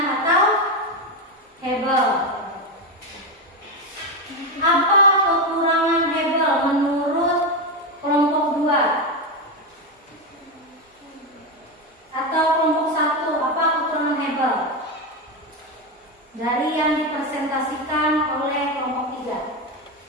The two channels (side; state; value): both; normal; correlation 0.11